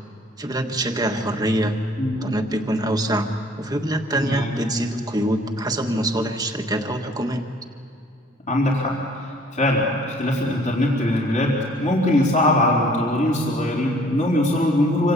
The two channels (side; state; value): both; normal; correlation 0.57